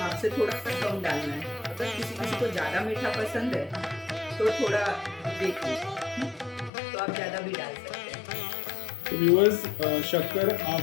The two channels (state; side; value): drops out; right; at 6.7 s